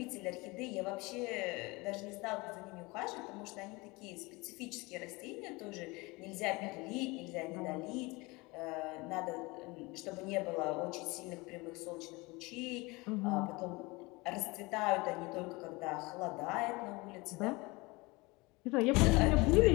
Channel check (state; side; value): quieter; right; 24.3 dB